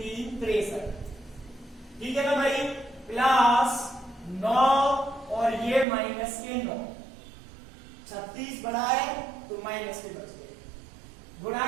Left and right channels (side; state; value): left; drops out; at 5.9 s